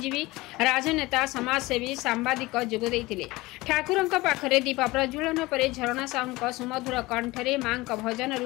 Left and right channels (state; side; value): quieter; right; 20.7 dB